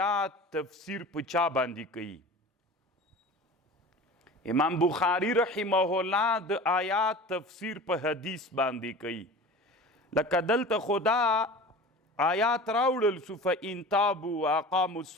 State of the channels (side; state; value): both; normal; correlation 0.37